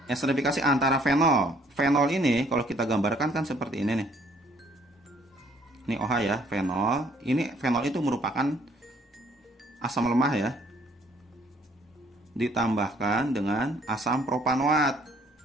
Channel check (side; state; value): both; normal; correlation 0.62